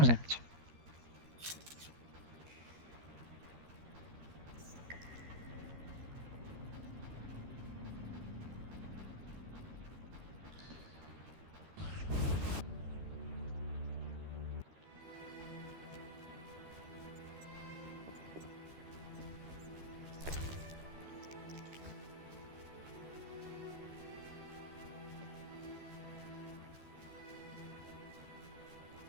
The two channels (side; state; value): left; late; 13 ms